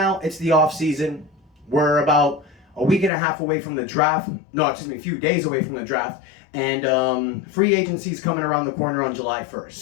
it's the off season. We're about a week and a half away from the draft. A few days away from the draft. And free agency is coming around the corner on July 1st.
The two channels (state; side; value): drops out; right; at 3.1 s